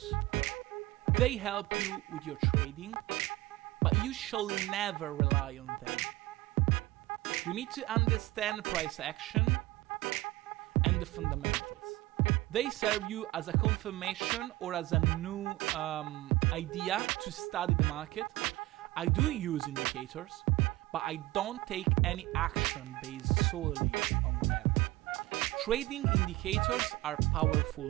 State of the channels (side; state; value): left; quieter; 18.6 dB